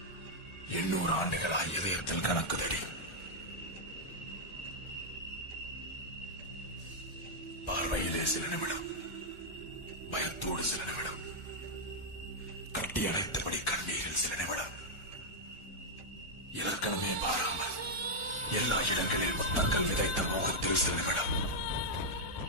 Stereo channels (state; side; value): late; right; 1.4 ms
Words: 800 ஆண்டுகளாய் இதயத்தில் கணக்குதடி. பார்வையிலே சில நிமிடம், பயத்தோடு சில நிமிடம், கட்டி அணைத்தபடி கண்ணீரில் சில நிமிடம், இலக்கணமே பாராமல் எல்லா இடங்களில் முத்தங்கள் விதைத்த மோகத்தில் சில நிமிடம்.